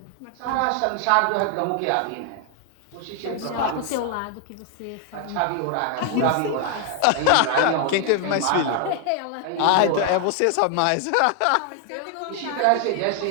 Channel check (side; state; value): both; different; correlation 0.00